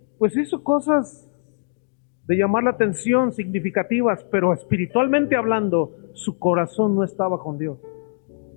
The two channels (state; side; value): silent; right; digital silence